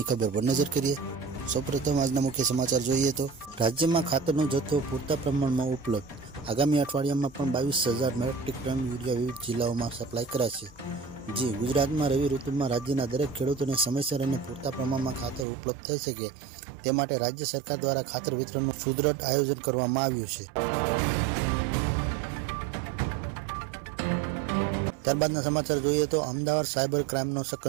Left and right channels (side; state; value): left; drops out; at 15.5 s